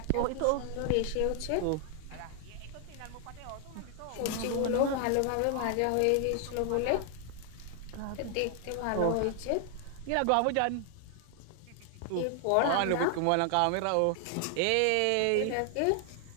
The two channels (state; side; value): different; both; correlation 0.00